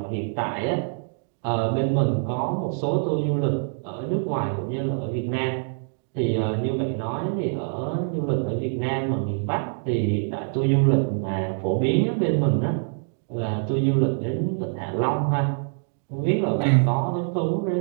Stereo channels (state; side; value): silent; left; digital silence